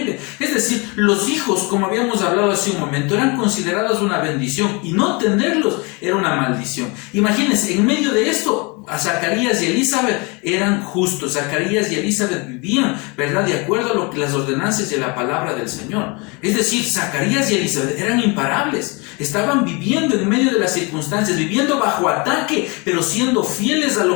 Es decir, los hijos, como habíamos hablado hace un momento, eran considerados una bendición y no tenerlos era una maldición. Imagínense, en medio de esto, a Zacarías y Elizabeth eran justos. Zacarías y Elizabeth vivían, ¿verdad?, de acuerdo a lo que las ordenanzas y a la palabra del Señor. Es decir, Zacarías y Elizabeth eran imparables. Estaban viviendo en medio de las circunstancias, viviendo bajo ataque, pero siendo fieles a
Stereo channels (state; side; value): quieter; right; 29.1 dB